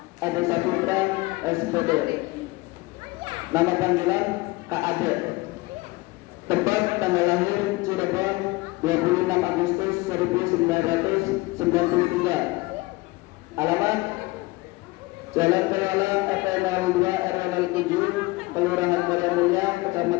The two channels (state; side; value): quieter; right; 21.8 dB